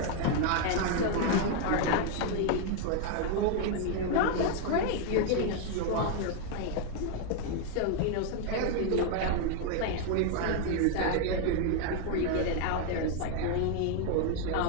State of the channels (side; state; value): both; different; correlation 0.00